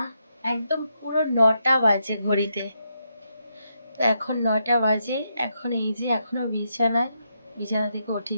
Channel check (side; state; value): both; inverted; correlation -0.81